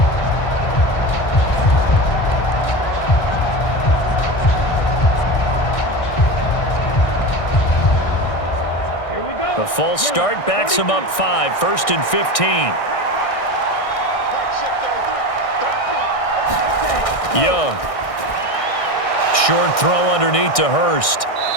The false start backs him up 5, 1st and 15. Young. Short throw underneath to Hurst.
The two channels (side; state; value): right; late; 1.6 ms